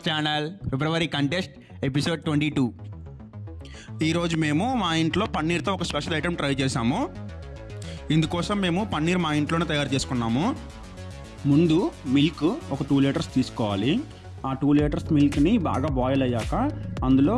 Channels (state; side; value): identical; both; correlation 1.00